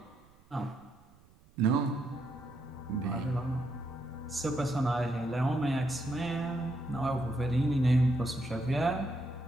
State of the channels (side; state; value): right; noise; rumble, 28 dB below the sound